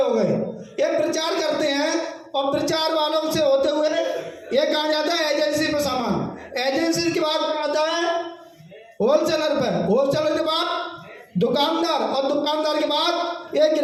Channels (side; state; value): both; identical; correlation 1.00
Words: हो गए, ये प्रचार करते हैं और प्रचार वालों से होते हुए ये कहा जाता है एजेंसी पे सामान, एजेंसी के बाद आता है होलसेलर पे, होलसेलर के बाद दुकानदार और दुकानदार के बाद ये